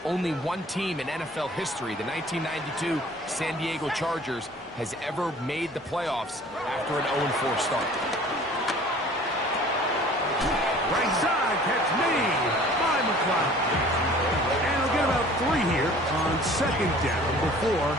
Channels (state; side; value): normal; both; correlation 0.49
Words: Only one team in NFL history, the 1992 San Diego Chargers, has ever made the playoffs after an 0-4 start. Right side, catch made by McLeod. And he'll get about 3 here on second down before